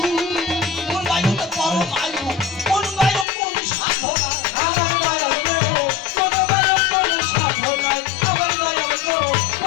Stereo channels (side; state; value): right; drops out; at 3.2 s